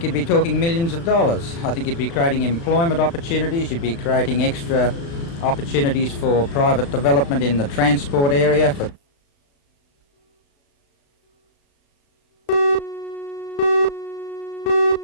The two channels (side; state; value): right; late; 36 ms